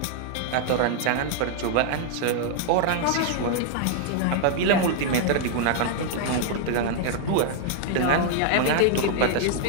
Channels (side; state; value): both; different; correlation 0.00